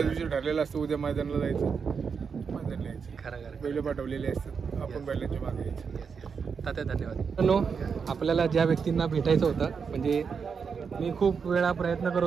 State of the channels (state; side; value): quieter; left; 6.0 dB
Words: दिवशी ठरलेलं असतं उद्या मैदानाला जायचं, मैदानाला यायचं. खरं बैल पाठवलेले असतात आपण बैलांच्या मागे यायचं. तात्या धन्यवाद. आपल्याला ज्या व्यक्तींना भेटायचं होतं म्हणजे मी खूप वेळा प्रयत्न